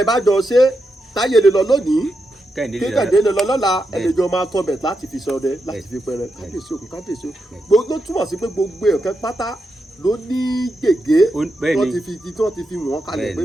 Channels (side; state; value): both; normal; correlation 0.86